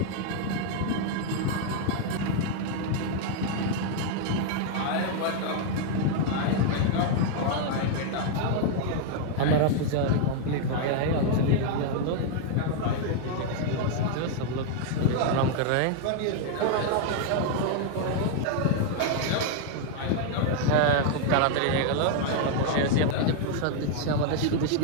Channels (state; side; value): different; both; correlation 0.00